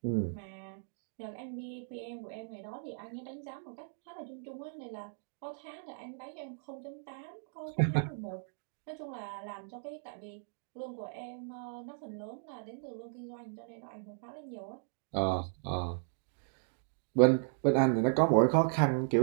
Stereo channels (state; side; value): silent; left; digital silence